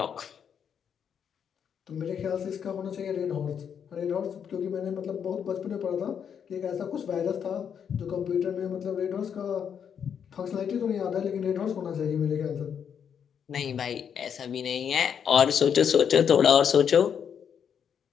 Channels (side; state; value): right; quieter; 7.8 dB